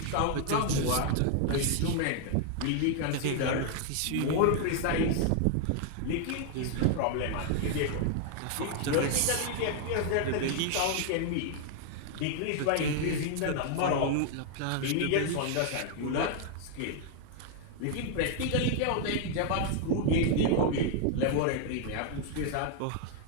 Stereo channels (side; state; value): both; different; correlation 0.00